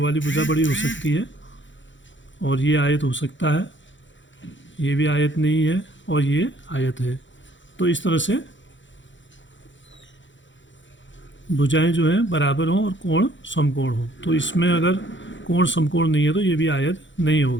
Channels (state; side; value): late; right; 0.54 ms